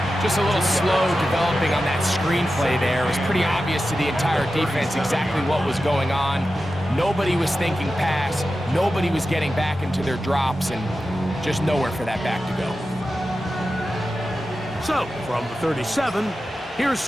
Just a little slow developing on that screen play there. It was pretty obvious to the entire defense exactly what was going on. Nobody was thinking pass. Nobody was getting back into their drops, and just nowhere for that back to go. So, from the 37, here's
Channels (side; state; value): both; normal; correlation 0.92